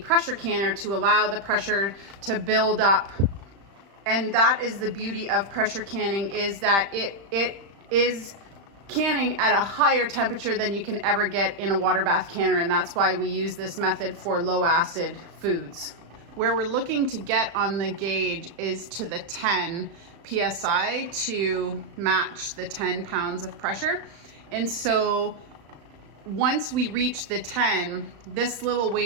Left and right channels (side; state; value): left; late; 35 ms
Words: canner to allow the pressure to build up. And that is the beauty of pressure canning, is that it is canning at a higher temperature than you can ever get in a water bath canner. And that's why we use this method for low acid foods. Where we're looking to get on the gauge is to the 10 PSI to match the 10 pounds of pressure. And so once we reach the 10, this little